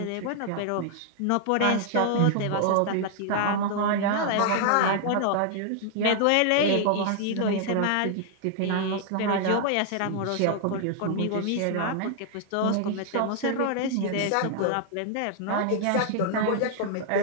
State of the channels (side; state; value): both; different; correlation 0.00